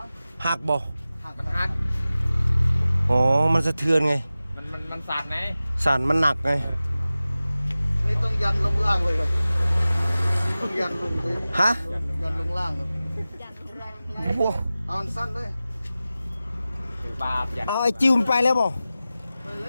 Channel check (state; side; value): inverted; both; correlation -0.96